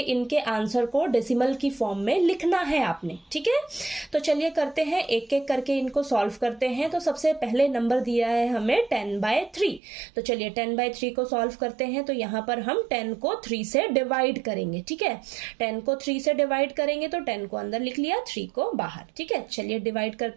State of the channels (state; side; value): drops out; left; at 9.8 s